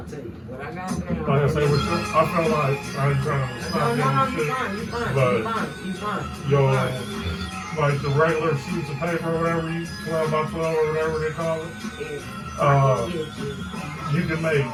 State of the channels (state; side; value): identical; both; correlation 1.00